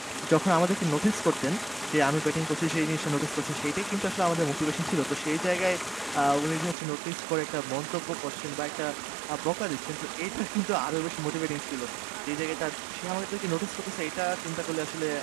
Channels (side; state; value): left; drops out; at 6.8 s